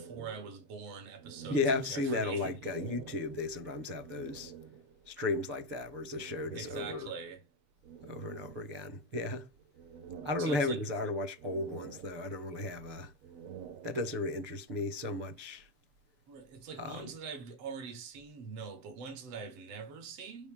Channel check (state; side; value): late; left; 6.9 ms